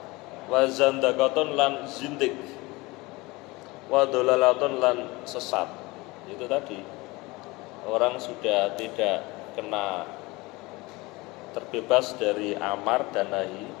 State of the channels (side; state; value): right; quieter; 22.9 dB